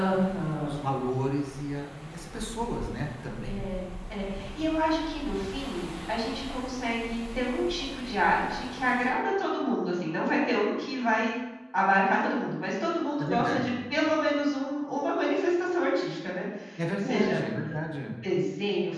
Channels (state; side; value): identical; both; correlation 1.00